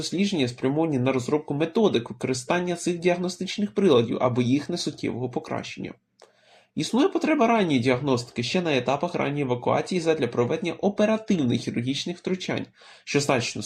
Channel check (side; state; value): both; identical; correlation 1.00